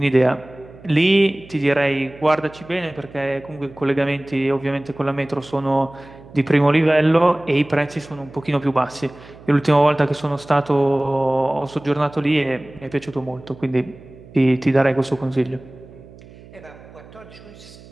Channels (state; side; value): noise; right; hum, 21 dB below the sound